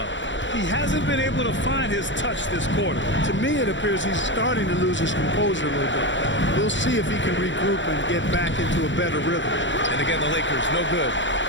He hasn't been able to find his touch this quarter. To me, it appears he's starting to lose his composure a little bit. We'll see if he can regroup and get back into a better rhythm. And again, the Lakers, no good.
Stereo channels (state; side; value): late; right; 0.54 ms